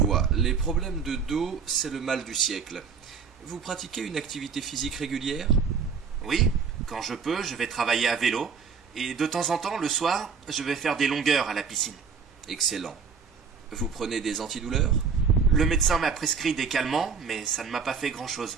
Les problèmes de dos, c'est le mal du siècle. Vous pratiquez une activité physique régulière? Oui, quand je peux, je vais travailler à vélo. Et de temps en temps, le soir, je vais faire des longueurs à la piscine. Excellent. Vous prenez des antidouleurs? Le médecin m'a prescrit des calmants, mais ça ne m'a pas fait grand-chose.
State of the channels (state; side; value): quieter; left; 6.0 dB